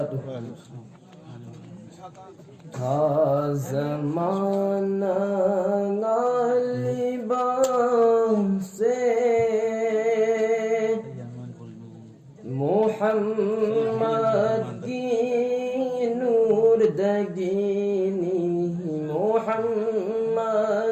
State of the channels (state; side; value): identical; both; correlation 1.00